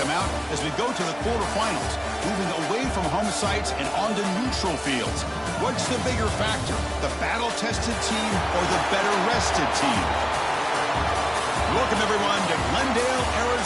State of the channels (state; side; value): identical; both; correlation 1.00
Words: mount as we go to the quarterfinals, moving away from home sites and onto neutral fields. What's the bigger factor, the battle-tested team or the better-rested team? Welcome, everyone, to Glendale,